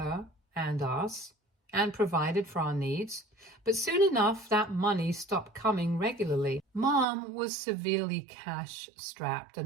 and us and provided for our needs. But soon enough, that money stopped coming regularly. Mom was severely cash-strapped,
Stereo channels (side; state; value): left; drops out; at 7.1 s